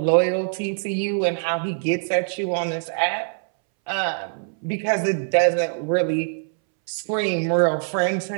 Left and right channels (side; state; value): left; silent; 63 dB below the other